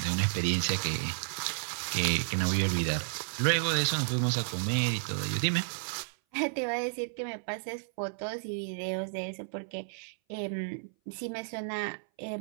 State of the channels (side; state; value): left; silent; 56 dB below the other